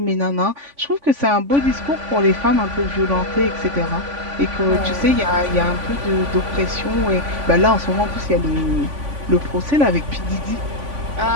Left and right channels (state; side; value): late; left; 3.5 ms